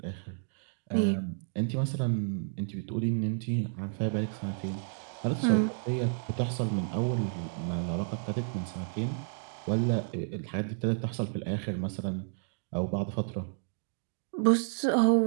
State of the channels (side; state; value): left; silent; 57 dB below the other